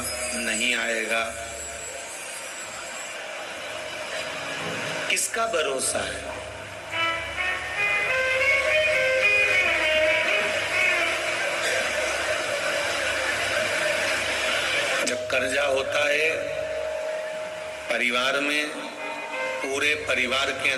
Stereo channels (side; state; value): both; identical; correlation 1.00